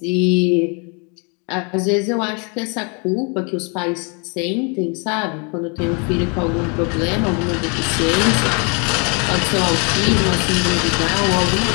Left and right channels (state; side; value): quieter; right; 34.6 dB